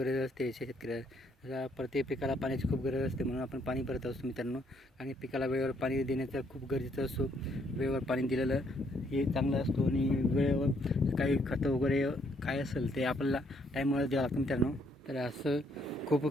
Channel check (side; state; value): both; normal; correlation 0.70